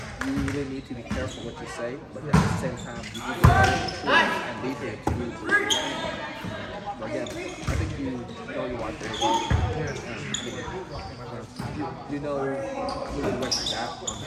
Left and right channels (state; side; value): identical; both; correlation 1.00